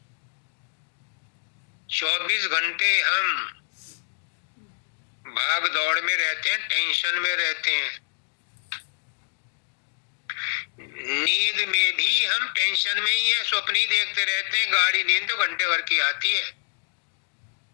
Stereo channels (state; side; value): silent; right; digital silence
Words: 24 घंटे हम भाग दौड़ में रहते हैं, टेंशन में रहते हैं। नींद में भी हम टेंशन में ही है, स्वप्न ही देखते रहते हैं। गाड़ी नींद तो घंटे भर की आती है।